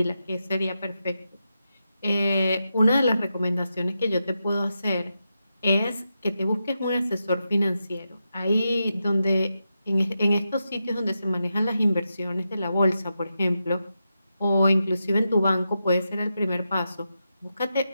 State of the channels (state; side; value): inverted; both; correlation -0.88